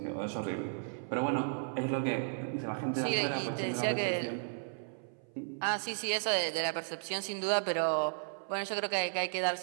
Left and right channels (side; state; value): left; silent; 55 dB below the other